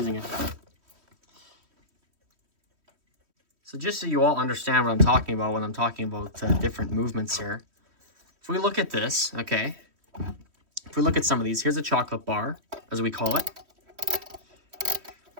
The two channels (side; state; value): left; late; 3.1 ms